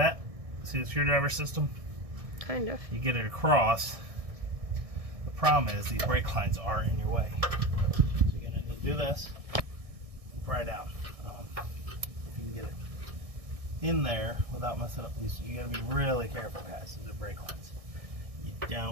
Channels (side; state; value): left; late; 1.6 ms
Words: See the screwdriver system? Kind of. You get it across. The problem is these brake lines are in your way. So you're going to do this and pry down. If you can get it in there without messing up these. You gotta be really careful, guys. These are brake lines. You